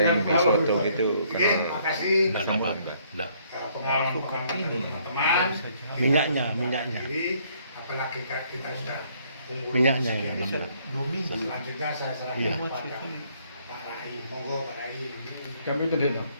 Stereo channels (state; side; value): inverted; both; correlation -0.66